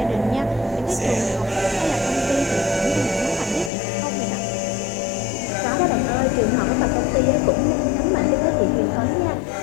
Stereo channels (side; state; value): right; drops out; at 3.7 s